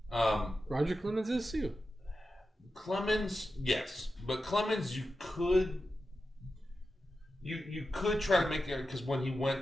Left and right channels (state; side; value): normal; both; correlation 0.91